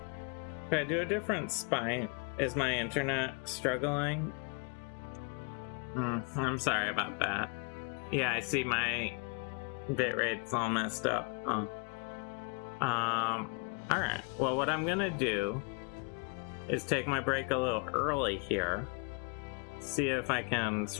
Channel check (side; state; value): right; quieter; 36.5 dB